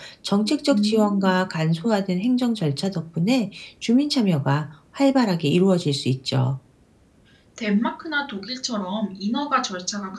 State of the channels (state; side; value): identical; both; correlation 1.00